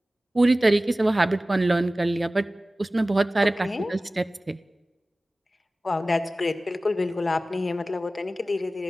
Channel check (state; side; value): normal; both; correlation 0.97